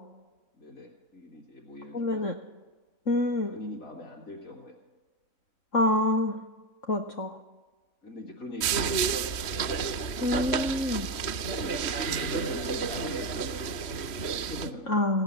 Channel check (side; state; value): right; late; 3.1 ms